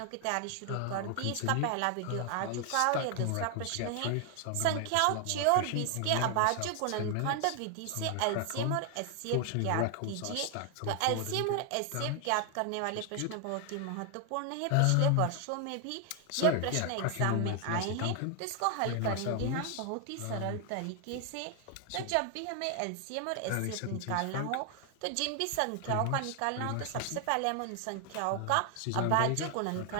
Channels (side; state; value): both; different; correlation 0.00